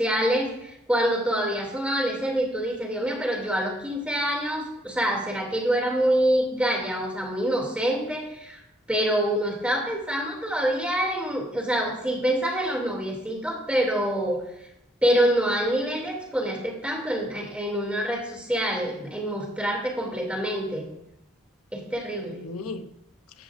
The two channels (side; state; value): both; normal; correlation 0.69